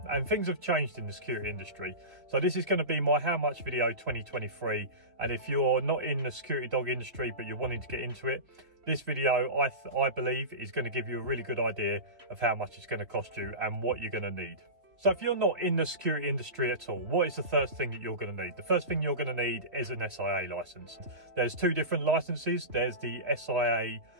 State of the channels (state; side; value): late; left; 3.2 ms